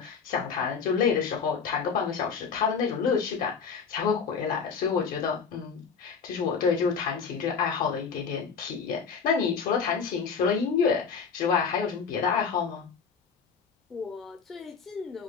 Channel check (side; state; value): right; quieter; 5.9 dB